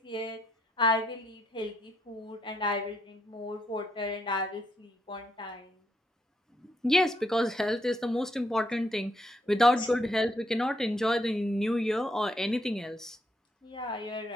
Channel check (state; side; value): normal; both; correlation 0.75